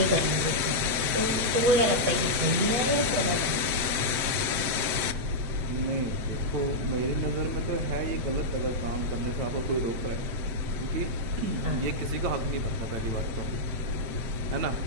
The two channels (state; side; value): late; left; 7.8 ms